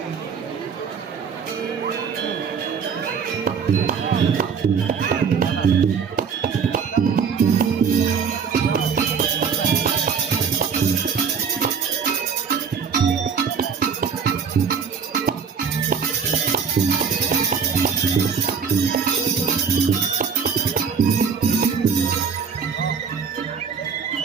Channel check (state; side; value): quieter; left; 6.3 dB